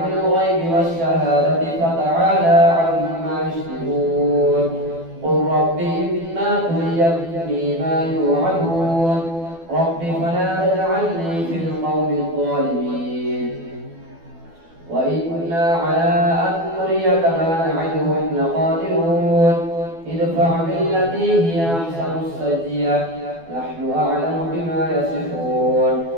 الغيب والشهادة فتعالى عما يشركون. قل رب إما تريني ما يوعدون رب فلا تجعلني في القوم الظالمين. وإنا على أن نريك ما نعدهم لقادرون. ادفع بالتي هي أحسن السيئة نحن أعلم بما يصفون.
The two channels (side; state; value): left; late; 12 ms